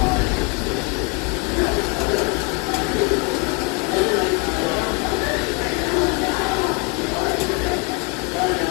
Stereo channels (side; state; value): right; quieter; 28.8 dB